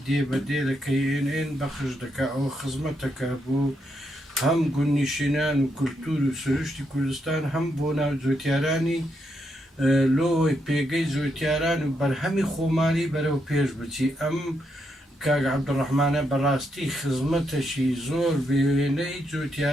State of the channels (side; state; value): both; normal; correlation 0.80